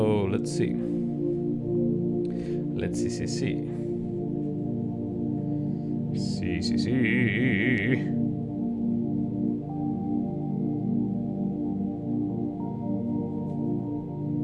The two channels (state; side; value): identical; both; correlation 1.00